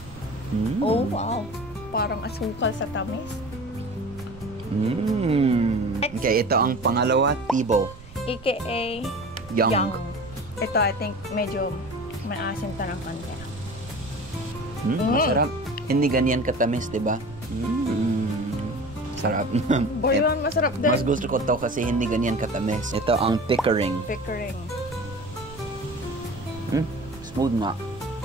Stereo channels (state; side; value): noise; right; rumble, 18 dB below the sound